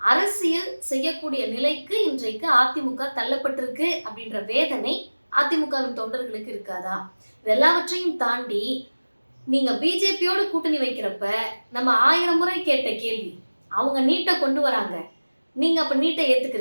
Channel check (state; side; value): inverted; both; correlation -1.00